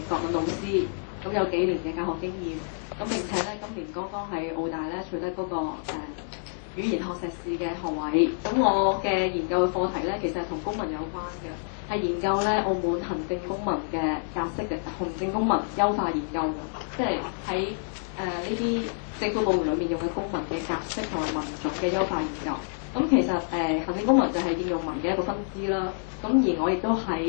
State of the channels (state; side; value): silent; right; digital silence